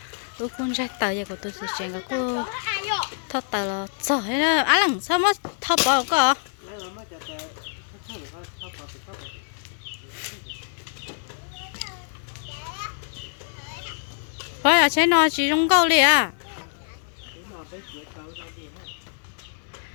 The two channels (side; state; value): right; silent; 61 dB below the other